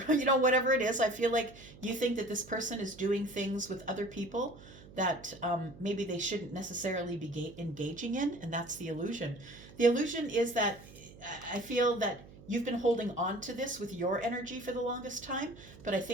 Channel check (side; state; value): right; noise; hum, 19 dB below the sound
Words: it is. I feel like you think that this person is doing things with other people that maybe they shouldn't necessarily be engaging in, and that's the illusion. The illusion is that I feel that you've been holding on to this with your energy for the longest time, but I